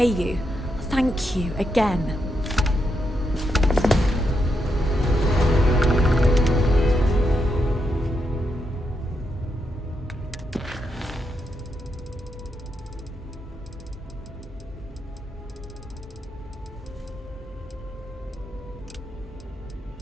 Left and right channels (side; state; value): both; normal; correlation 0.82